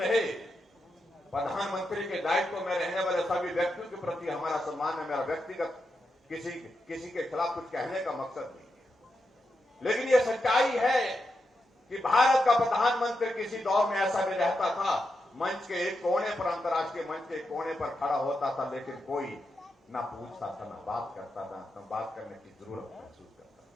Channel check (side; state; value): both; normal; correlation 0.86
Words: प्रधानमंत्री के दायित्व में रहने वाले सभी व्यक्तियों के प्रति हमारा सम्मान है। मेरा व्यक्तिगत किसी के खिलाफ कुछ कहने का मकसद नहीं है, लेकिन यह सच्चाई है कि भारत का प्रधानमंत्री किसी दौर में ऐसा भी रहता था, मंच के एक कोने पर, अंतर्राष्ट्रीय मंच के एक कोने पर खड़ा होता था, लेकिन कोई ना पूछता था, ना बात करता था, ना बात करने की जरूरत महसूस करता था।